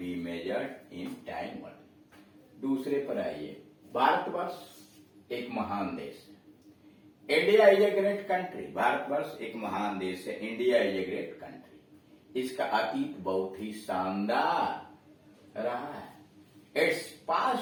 measured in time only. दूसरे पर आइए, भारतवर्ष एक महान देश है। India is a great country, भारतवर्ष एक महान देश है। India is a great country. इसका अतीत बहुत ही शानदार रहा है। Its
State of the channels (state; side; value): identical; both; correlation 1.00